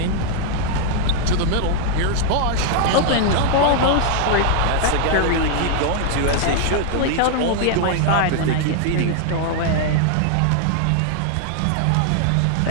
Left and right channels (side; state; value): both; different; correlation 0.00